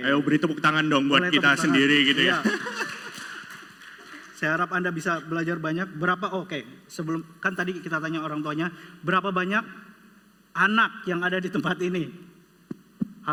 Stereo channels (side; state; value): both; identical; correlation 1.00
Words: Ayo beri tepuk tangan dong buat Boleh kita tepuk tangan. sendiri gitu ya. Iya. Saya harap Anda bisa belajar banyak. Sebelum kan tadi kita tanya orang tuanya, berapa banyak anak yang ada di tempat ini?